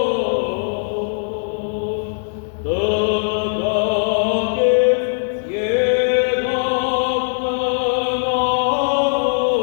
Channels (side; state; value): right; silent; digital silence